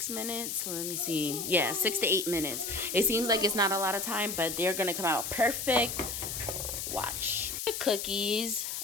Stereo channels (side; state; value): left; noise; hiss, 4 dB below the sound